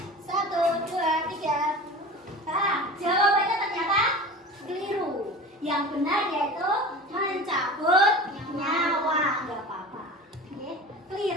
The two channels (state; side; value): normal; both; correlation 0.35